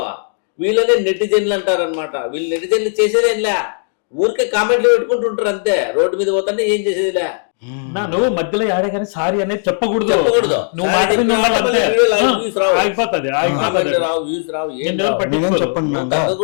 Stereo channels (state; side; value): silent; right; digital silence